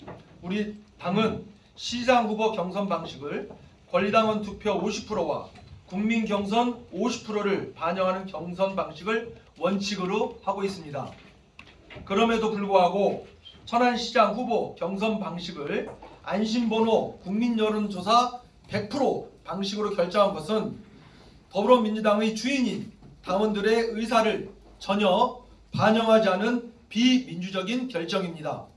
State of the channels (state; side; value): identical; both; correlation 1.00